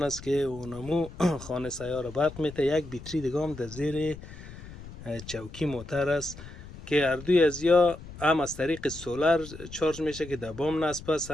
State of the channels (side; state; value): left; noise; rumble, 15 dB below the sound